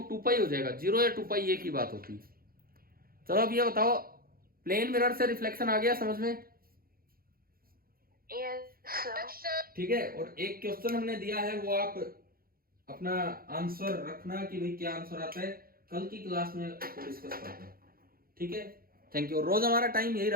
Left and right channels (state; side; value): late; left; 0.43 ms